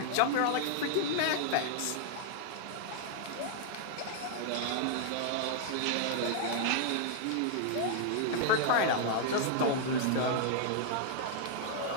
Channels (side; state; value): both; different; correlation -0.01